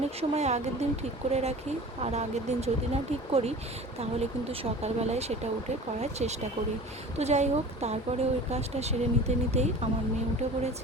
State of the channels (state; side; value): normal; both; correlation 0.39